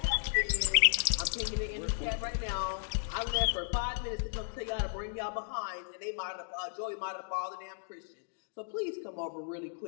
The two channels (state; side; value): silent; right; digital silence